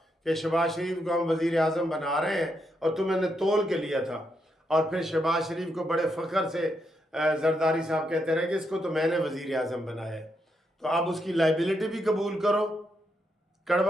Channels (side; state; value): both; normal; correlation 0.80